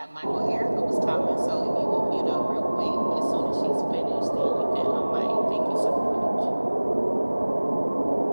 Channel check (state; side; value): inverted; both; correlation -1.00